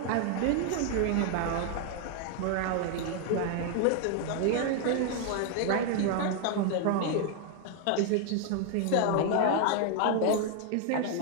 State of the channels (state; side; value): different; both; correlation 0.00